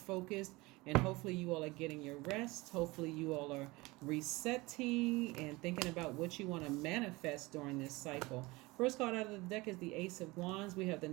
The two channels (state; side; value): quieter; left; 22.4 dB